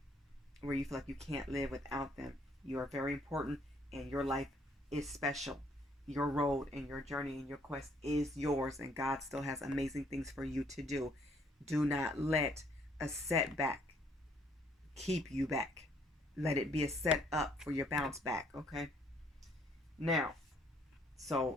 where you feel like you can't live without them. You are very important, and your life is special. Your road and your journey and your quest is yours, and God still has amazing things for you to do. Do not let a setback keep you back. Let it be a set up for your bounce back. Okay? Now,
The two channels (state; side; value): normal; both; correlation 0.65